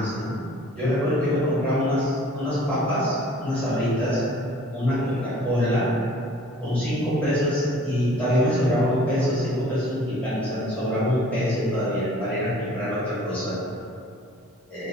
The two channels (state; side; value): normal; both; correlation 0.51